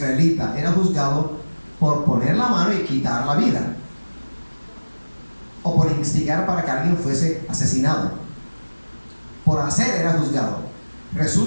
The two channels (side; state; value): both; inverted; correlation -1.00